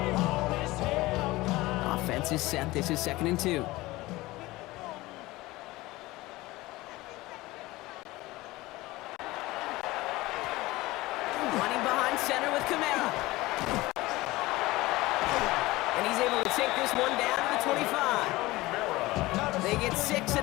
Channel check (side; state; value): right; quieter; 19.5 dB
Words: Offense is set. This is 2nd and 2. Running behind center with Kamara. And he's able to take this one down to the 25. They get 6